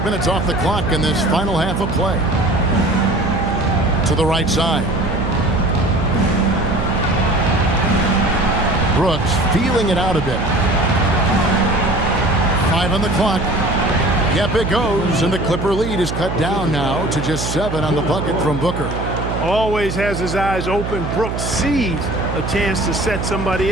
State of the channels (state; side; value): noise; right; hum, 5 dB below the sound